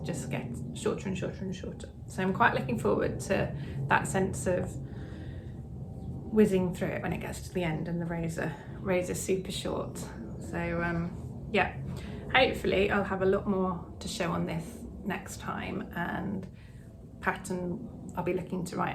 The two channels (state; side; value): identical; both; correlation 1.00